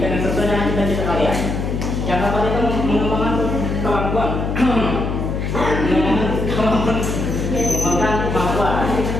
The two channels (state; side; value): noise; left; hum, 2 dB below the sound